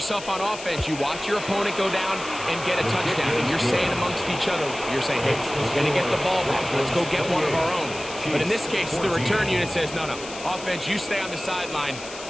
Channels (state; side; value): noise; left; hiss, 13 dB below the sound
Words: on offense. You watch your opponent go down and get a touchdown. And you're saying amongst each other, you're saying, hey, we're going to get the ball back. Let's go get one of our own. But in this case, the return unit says, no, offense, you stay on the sideline.